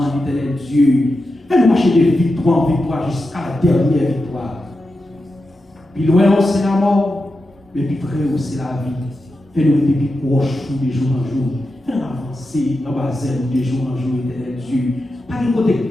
éternel Dieu. Fais-nous marcher de victoire en victoire jusqu'à la dernière victoire. Puis loin, c'est la mort, mais puis près, c'est la vie. Fais-nous être plus proches de jour en jour. Fais-nous avancer dans la base de jour en jour, éternel Dieu. Pas de côté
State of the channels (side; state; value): both; normal; correlation 0.90